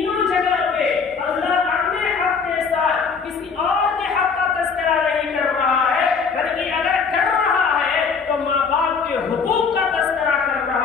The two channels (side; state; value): right; quieter; 5.5 dB